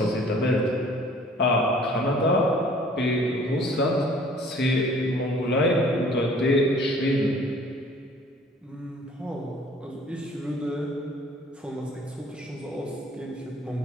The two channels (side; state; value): both; normal; correlation 0.53